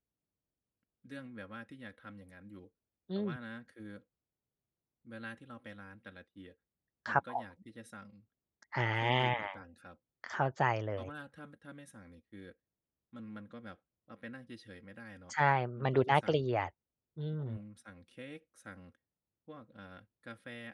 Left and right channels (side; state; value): both; identical; correlation 1.00